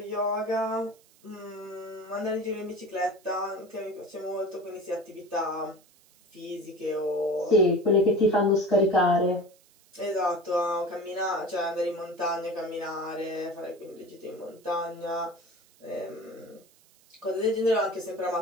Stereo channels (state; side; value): noise; right; hiss, 29 dB below the sound